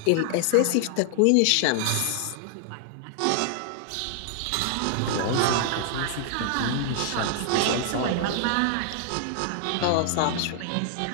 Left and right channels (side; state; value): both; different; correlation -0.01